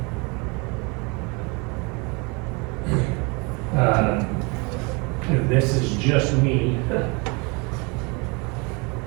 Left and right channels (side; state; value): left; quieter; 30.0 dB